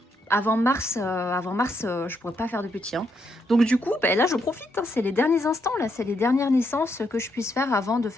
avant mars, je pourrais pas faire de petits. Hein. Donc du coup, là je profite. Hein. C'est les derniers instants. Là, c'est les dernières naissances que je puisse faire avant de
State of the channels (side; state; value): both; normal; correlation 0.78